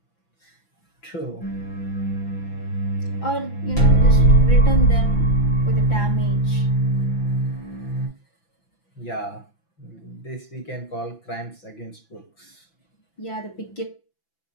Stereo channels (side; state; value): right; late; 6.0 ms